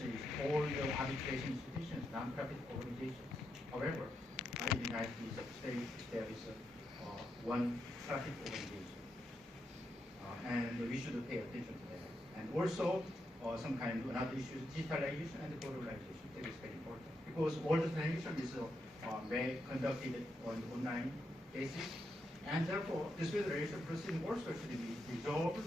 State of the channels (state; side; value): normal; both; correlation 0.83